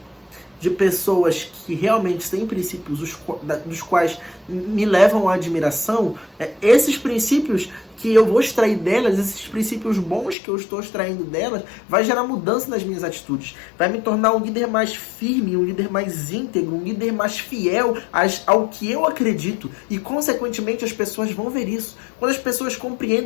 de pessoas que realmente têm princípios dos quais me levam à admiração, esses princípios que eu vou extrair delas, esses princípios bons que eu estou extraindo delas, vai gerar mudança nas minhas atitudes. Vai me tornar um líder mais firme, um líder mais íntegro, um líder mais fiel ao que eu acredito. E, consequentemente, as pessoas vão ver isso. Quando as pessoas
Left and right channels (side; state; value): right; drops out; at 10.4 s